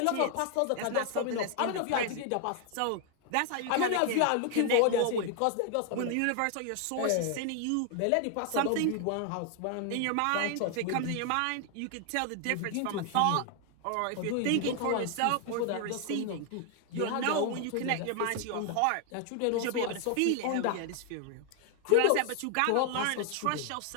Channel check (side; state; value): both; different; correlation 0.00